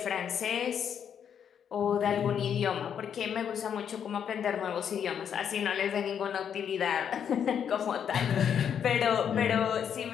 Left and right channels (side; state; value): right; quieter; 8.3 dB